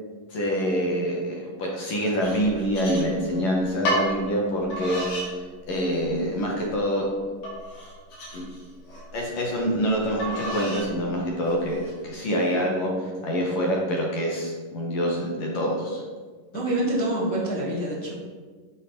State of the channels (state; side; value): late; right; 11 ms